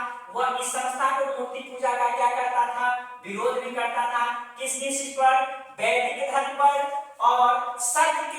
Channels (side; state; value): both; identical; correlation 1.00